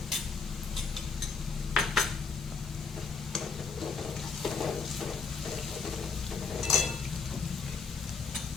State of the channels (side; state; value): right; quieter; 5.1 dB